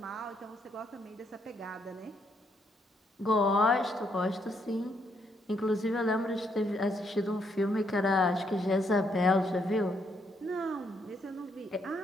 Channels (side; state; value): both; normal; correlation 0.74